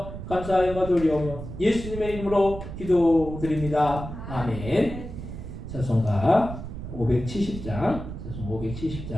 감사하여 드리오며 예수님의 이름으로 기도드립니다. 아멘. 찬송가 570장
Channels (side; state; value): right; noise; rumble, 9 dB below the sound